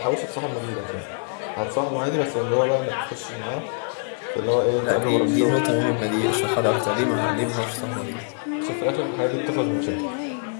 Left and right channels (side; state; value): right; silent; 62 dB below the other